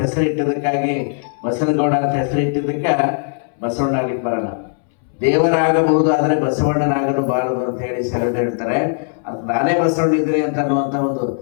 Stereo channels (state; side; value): silent; right; 66 dB below the other